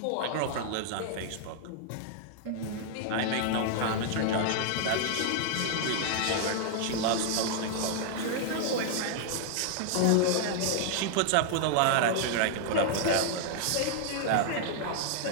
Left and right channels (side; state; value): both; different; correlation 0.00